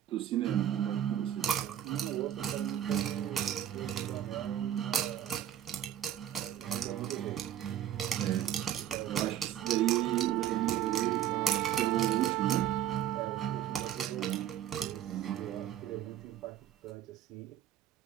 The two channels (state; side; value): quieter; left; 11.1 dB